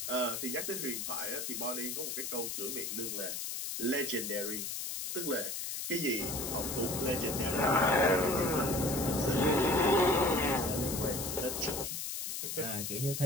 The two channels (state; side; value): noise; left; hiss, 4 dB below the sound